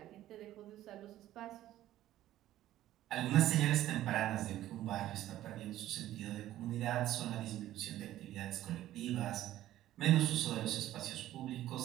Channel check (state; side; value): quieter; left; 13.8 dB